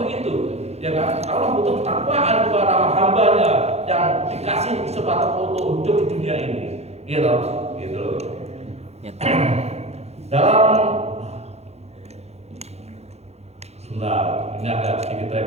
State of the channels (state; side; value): late; left; 0.31 ms